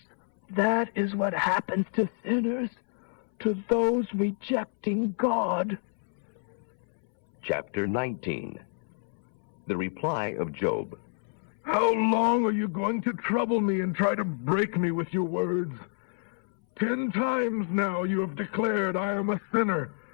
that is what happens to sinners, to those rejecting God. Chapter 19. The reply of Job. How long are you going to trouble me and try to break me with your words? 10 times now you have declared I am a sinner.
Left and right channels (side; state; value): right; silent; 59 dB below the other